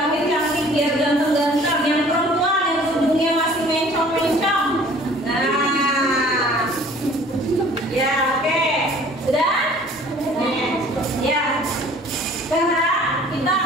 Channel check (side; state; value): both; normal; correlation 0.51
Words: biar ganteng-ganteng. Yang perempuan yang tubuhnya masih mencong-mencong. Nah, ya. Sudah? Ya. Sekarang kita